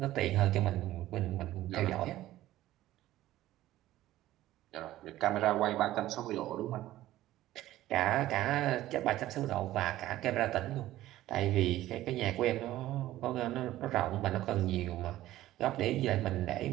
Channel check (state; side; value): quieter; left; 14.9 dB